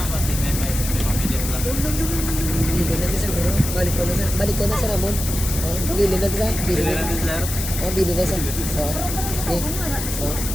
Bili natin siguro. Balik ko na sa Ramon. Bili natin sa. Bili na sa. Okay.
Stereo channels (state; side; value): noise; left; hiss, 6 dB below the sound